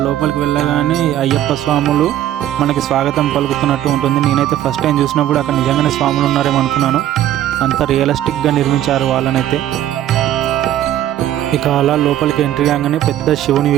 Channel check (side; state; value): left; quieter; 12.3 dB